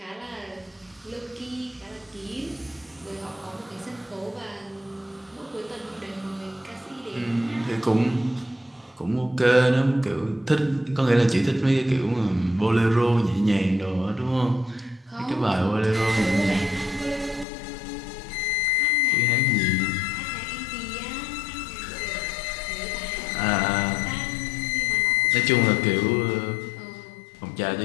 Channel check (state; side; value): drops out; right; at 17.4 s